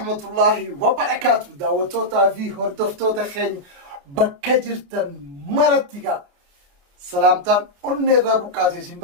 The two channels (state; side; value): late; left; 28 ms